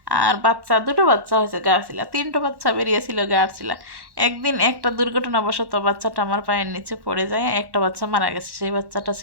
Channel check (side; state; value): left; late; 1.1 ms